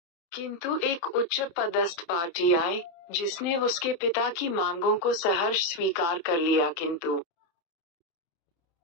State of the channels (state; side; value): late; right; 29 ms